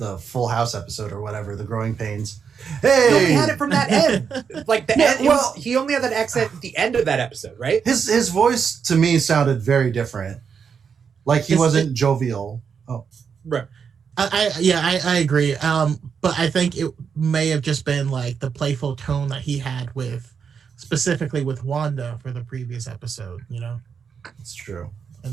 Full House episode or whatever, The Growing Pains. Hey! No, he had it from that end. Like the end. Well, he only had that accent at the end of that episode, right? His voice to me sounded very different. Like he wasn't jovial. Oh. Right. I agree. But I think it may have just been like the playful tone that he had specifically with Wanda for the previous episode, It's true. And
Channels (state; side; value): quieter; left; 6.5 dB